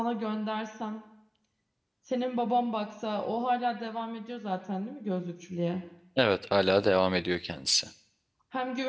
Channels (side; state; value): both; identical; correlation 1.00